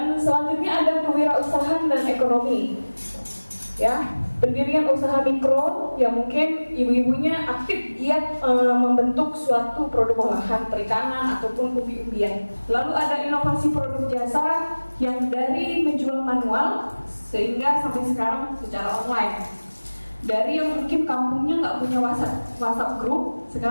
selanjutnya ada kewirausahaan dan ekonomi. Ya, pendirian usaha mikro yang mungkin ibu-ibunya aktif giat membentuk suatu produk olahan perikanan ataupun umbi-umbian. Lalu ada inovasi produk jasa yang dari menjual manual sehingga sampai sekarang secara online. Dari yang mungkin kampungnya nggak punya WhatsApp group,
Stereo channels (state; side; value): inverted; both; correlation -1.00